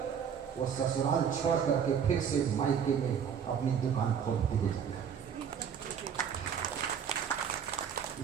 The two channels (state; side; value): quieter; left; 7.6 dB